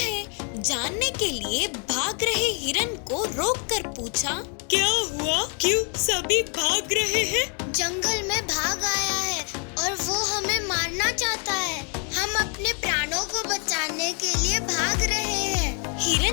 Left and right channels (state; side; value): quieter; right; 39.3 dB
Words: जानने के लिए भाग रहे हिरन को रोककर पूछा, क्या हुआ? क्यों सभी भाग रहे हैं? जंगल में भाग आया है और वो हमें मारना चाहता है। हम अपने प्राणों को बचाने के लिए भाग रहे हैं।